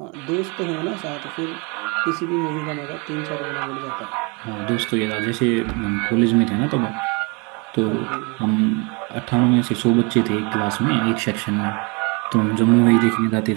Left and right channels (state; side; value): quieter; left; 30.8 dB